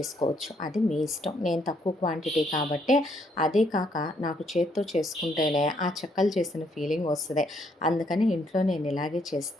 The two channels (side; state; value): both; normal; correlation 0.71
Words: అది మీ ఇష్టం. నేను తక్కువ క్వాంటిటీ కాబట్టి, అదే కాక నాకు చేత్తో చేసుకుంటేనే ఆ చెక్కలు చేసిన ఫీలింగ్ వస్తుంది. అందుకని ఇంట్లో నేను ఇలాగే